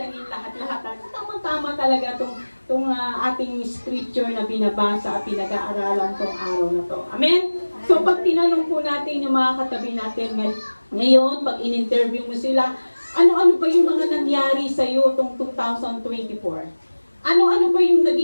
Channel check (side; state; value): both; inverted; correlation -1.00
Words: lahat-lahat. Tama-tama talaga itong ating scripture na binabasa at pinag-aaralan tong araw na to. Amen? So, pag tinanong po natin yung mga katabi natin ngayon, pag in-interview mo sila, ano-ano ba yung mga nangyari sa iyo itong 2024? Ano-ano ba yung